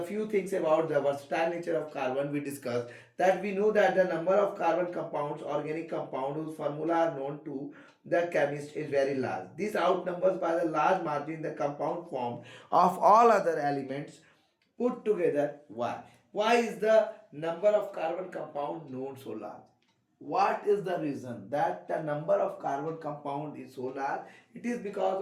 few things about the versatile nature of carbon we discussed, that we know that the number of carbon compounds, organic compound whose formula are known to the chemist is very large. This outnumbers by the large margin the compound formed of all other elements put together. Why? Why is the number of carbon compound known so large? What is the reason that the number of carbon compound is so large? It is because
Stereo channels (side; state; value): both; identical; correlation 1.00